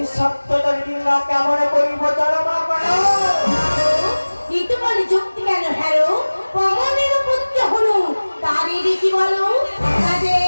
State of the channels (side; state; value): both; inverted; correlation -1.00